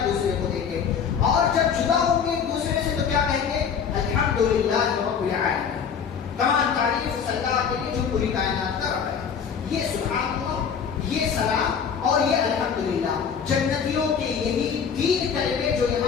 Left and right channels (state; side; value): quieter; right; 7.0 dB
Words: دوسرے کو دیں گے. اور جب جدا ہوں گے ایک دوسرے سے تو کیا کہیں گے؟ الحمدللہ رب العالمین، تمام تعریف اللہ کے لیے جو پوری کائنات کا رب ہے. یہ سبحان اللہ، یہ سلام اور یہ الحمدللہ، جنتیوں کے یہی تین کلمے جو